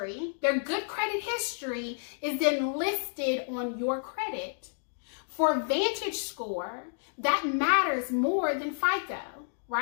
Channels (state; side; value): silent; right; digital silence